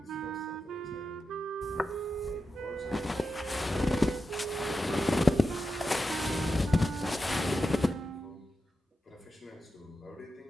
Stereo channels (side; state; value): both; normal; correlation 0.90